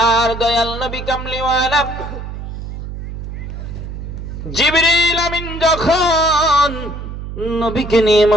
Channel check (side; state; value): right; noise; hum, 8 dB below the sound